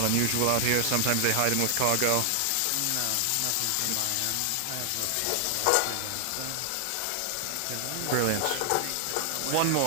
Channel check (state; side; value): different; both; correlation 0.00